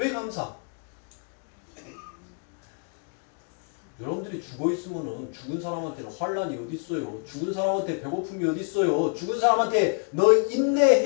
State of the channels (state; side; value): quieter; right; 39.1 dB